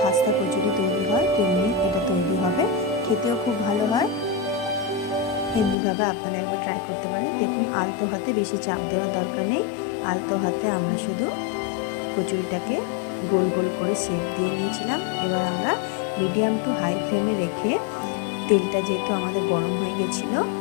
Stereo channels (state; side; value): drops out; right; at 5.8 s